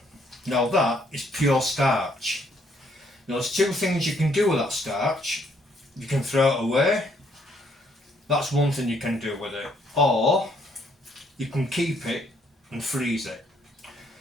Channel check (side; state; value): both; normal; correlation 0.69